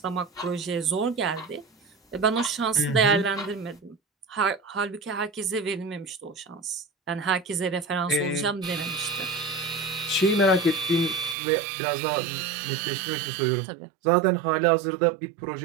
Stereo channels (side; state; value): left; drops out; at 11.4 s